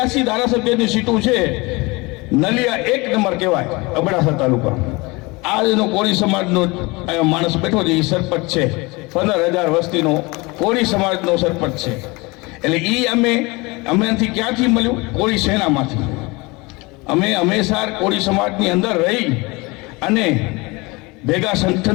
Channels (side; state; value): right; quieter; 24.9 dB